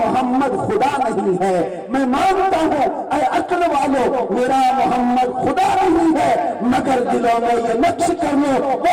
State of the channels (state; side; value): identical; both; correlation 1.00